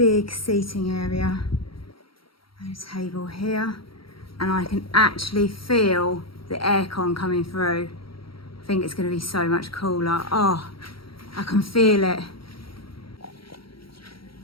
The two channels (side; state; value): right; late; 0.74 ms